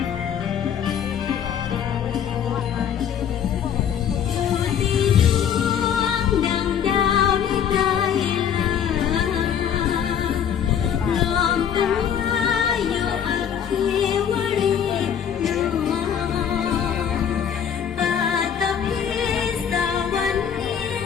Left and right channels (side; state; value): right; quieter; 8.5 dB